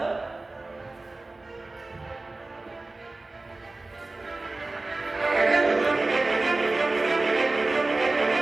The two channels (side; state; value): left; quieter; 3.2 dB